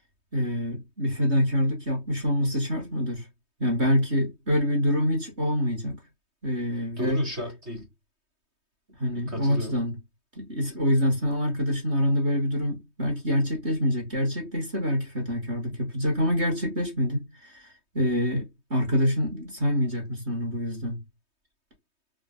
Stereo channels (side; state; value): left; late; 3.2 ms